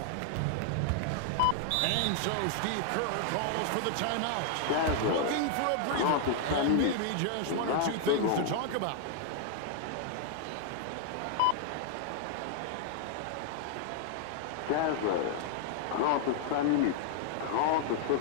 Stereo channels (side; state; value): both; different; correlation 0.00